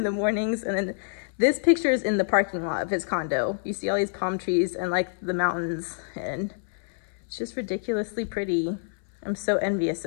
the mornings. And then This picture is in the parking lot of his condo. You see all these palm trees and like the mountains, and it's just ridiculously pretty. I'm so envious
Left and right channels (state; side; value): silent; right; 60 dB below the other